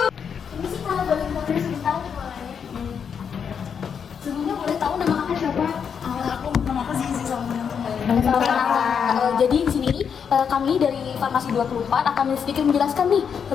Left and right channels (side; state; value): right; quieter; 7.1 dB